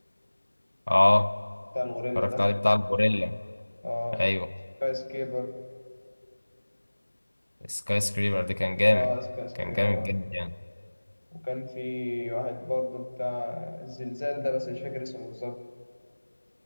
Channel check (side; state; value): both; inverted; correlation -1.00